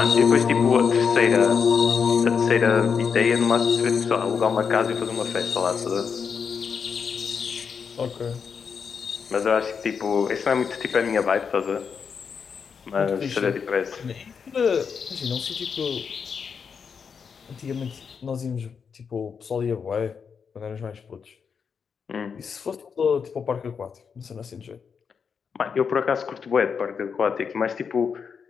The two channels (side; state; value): right; quieter; 6.3 dB